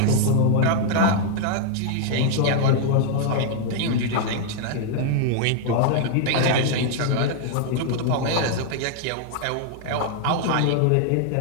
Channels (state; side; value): different; both; correlation -0.01